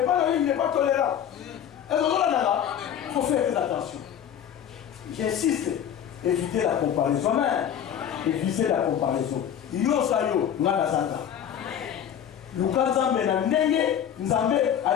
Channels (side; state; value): right; quieter; 9.3 dB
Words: pas il n'est pas tolérant. Il faut faire très attention. J'insiste, éviter la comparaison. Amen. Éviter la comparaison. Yo sayo, ngana santa. Luka Nzambe na ndenge, Nzambe